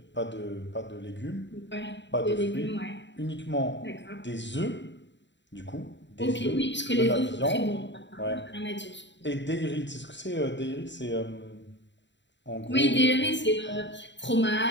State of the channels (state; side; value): late; right; 0.52 ms